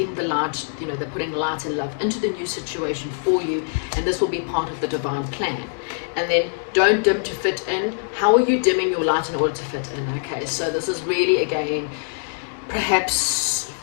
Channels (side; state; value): right; silent; 63 dB below the other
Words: the light, you know, they're putting light and love into the new situation for you, and this will be part of the divine plan. And then don't dim to fit in. How are you dimming your light in order to fit in? Okay, so this is really, again, perhaps,